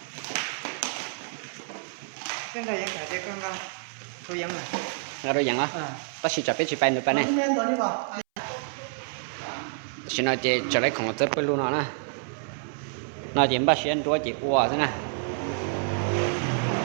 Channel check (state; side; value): silent; left; 59 dB below the other